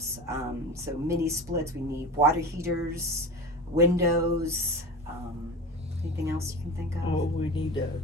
So mini splits, we need water heaters, windows, anything else you can think of? Oh, we need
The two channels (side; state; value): both; normal; correlation 0.30